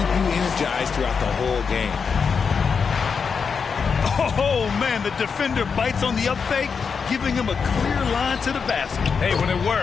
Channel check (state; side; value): quieter; right; 5.8 dB